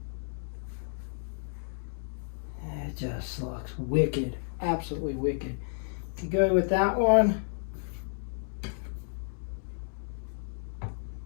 Just looks wicked, absolutely wicked. To go with that one,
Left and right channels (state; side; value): silent; right; digital silence